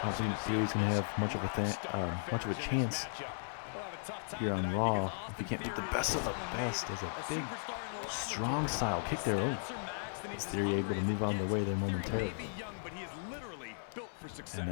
don't think Theory's going to have much of a chance here on Raw if he can't beat the best of the best. As a big, strong style kick there. Oh, is Theory able to move on the way there momentarily? And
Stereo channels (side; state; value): right; silent; digital silence